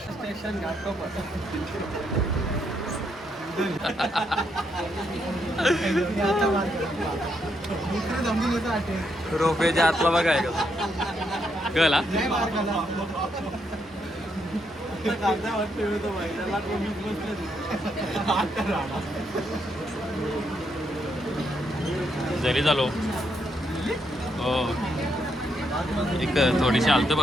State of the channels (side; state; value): both; normal; correlation 0.77